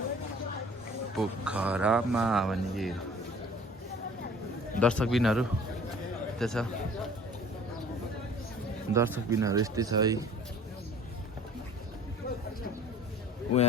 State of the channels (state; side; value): normal; both; correlation 0.49